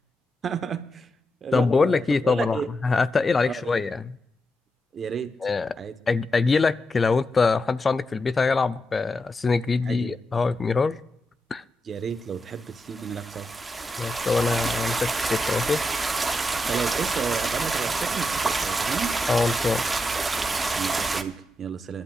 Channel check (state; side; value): normal; both; correlation 0.87